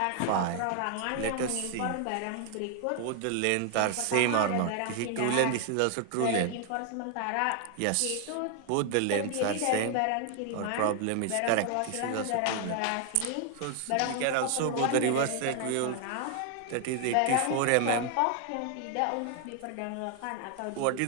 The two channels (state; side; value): different; both; correlation 0.00